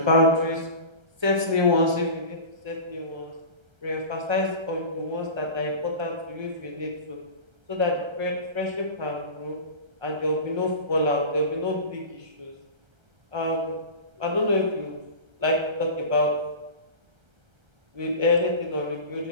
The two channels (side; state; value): left; late; 1.3 ms